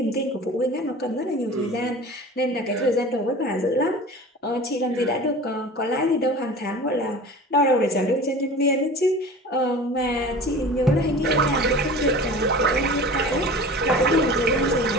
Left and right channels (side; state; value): both; normal; correlation 0.38